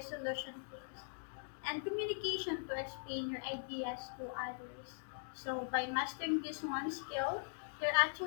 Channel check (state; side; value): silent; right; digital silence